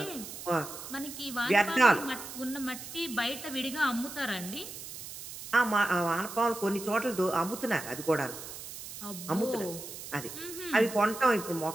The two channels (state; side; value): noise; right; hiss, 11 dB below the sound